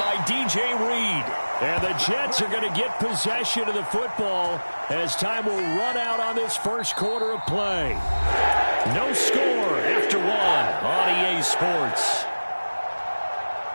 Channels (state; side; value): inverted; both; correlation -1.00